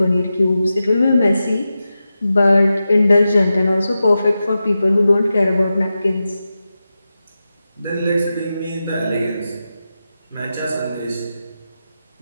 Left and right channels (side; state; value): both; inverted; correlation -0.91